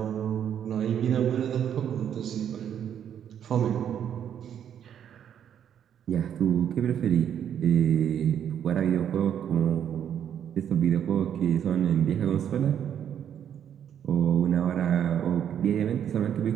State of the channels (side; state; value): left; quieter; 9.2 dB